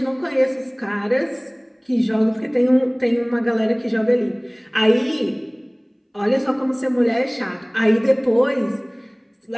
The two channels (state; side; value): identical; both; correlation 1.00